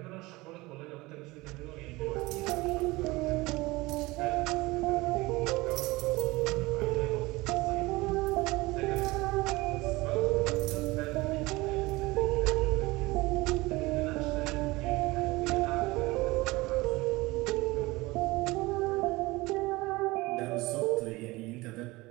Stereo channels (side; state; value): left; quieter; 21.4 dB